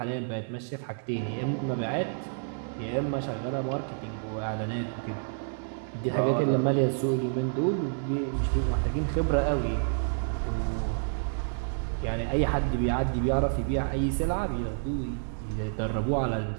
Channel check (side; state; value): left; silent; digital silence